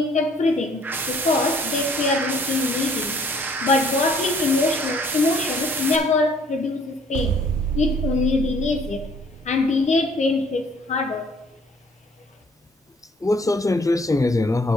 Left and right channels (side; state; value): both; normal; correlation 0.59